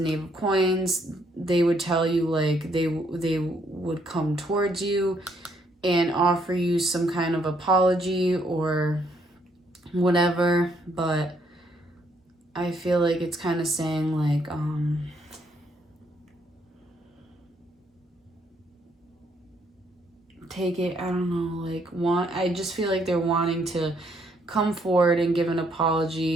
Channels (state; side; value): normal; both; correlation 0.70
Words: Knave of Coins. They would tell you, like, they would come towards you and offer you some kind of apology or whatever. But I feel like it's kind of saying, like, take it, I don't know, like, I just feel like they're wanting to come forward and give an